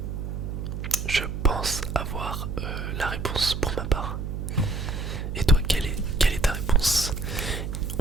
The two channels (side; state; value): right; noise; hum, 5 dB below the sound